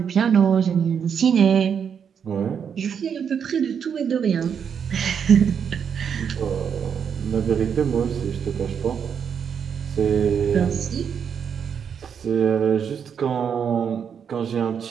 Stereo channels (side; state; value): left; quieter; 7.4 dB